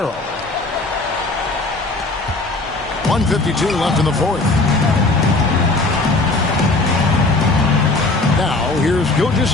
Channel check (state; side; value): quieter; right; 3.2 dB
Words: 1:52 left in the fourth. Now, here's